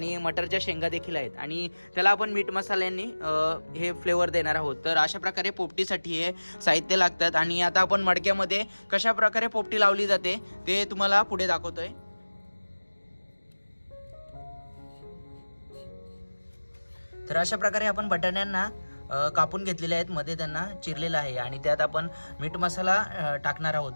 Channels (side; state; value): both; inverted; correlation -1.00